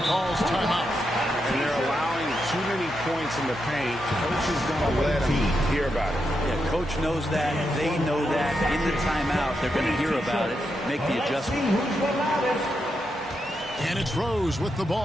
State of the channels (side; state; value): both; normal; correlation 0.84